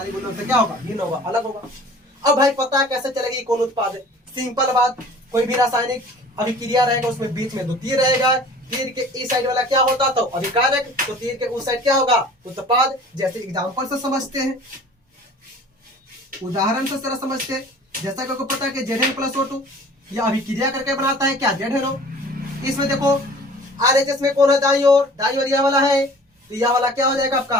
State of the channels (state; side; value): normal; both; correlation 0.47